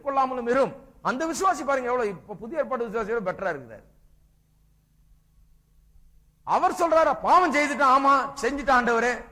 கொள்ளாமலும் இரும். அந்த விசுவாசி பாருங்க எவ்வளவு இப்ப புதிய ஏற்பாட்டு விசுவாசியோட பெட்டரா இருக்கிறார். அவர் சொல்றாரு பாவம் செய்துட்டான், ஆமா செஞ்சுட்டான் ஆண்டவரே,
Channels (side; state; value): both; identical; correlation 1.00